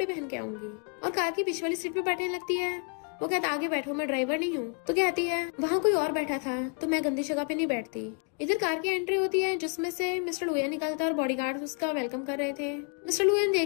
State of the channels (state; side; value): quieter; right; 39.2 dB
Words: पहन के आऊंगी, और कार की बीच वाली सीट पे बैठने लगती है। वो कहता आगे बैठो मैं ड्राइवर नहीं हूँ। तो कहती है वहाँ कोई और बैठा था तो मैं गंदी जगह पे नहीं बैठती। इधर कार की एंट्री होती है जिसमें से मिस्टर लुयन निकलता है और बॉडीगार्ड उसका वेलकम कर रहे थे। मिस्टर लुयन